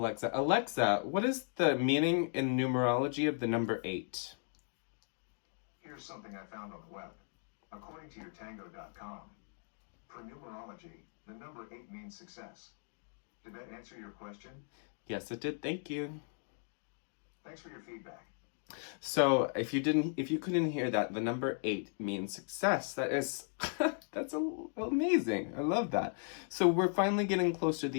Alexa, what is the meaning in numerology of the number 8? Here's something I found on the web. According to yourtango.com, for numerology, the number 8 means success. Did that answer your question? Yes, it did. Thank you. Thanks for your feedback. So if you couldn't hear that, the number 8 means success. That is, that's amazing. I love that. So we're finally getting close to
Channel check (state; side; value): silent; right; 53 dB below the other